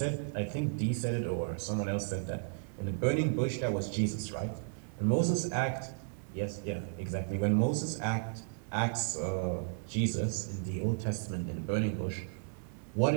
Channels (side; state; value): left; silent; 55 dB below the other